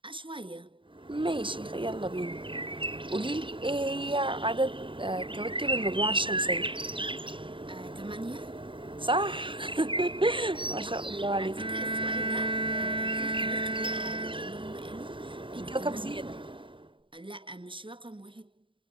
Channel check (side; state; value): left; late; 0.25 ms